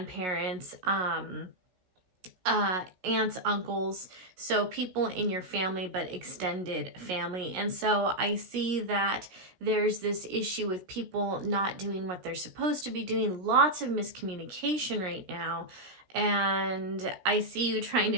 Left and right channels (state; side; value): late; left; 16 ms